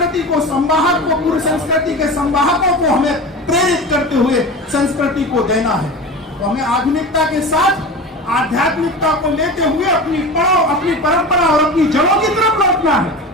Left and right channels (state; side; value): normal; both; correlation 0.31